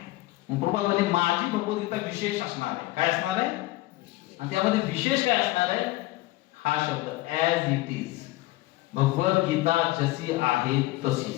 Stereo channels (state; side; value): quieter; right; 18.6 dB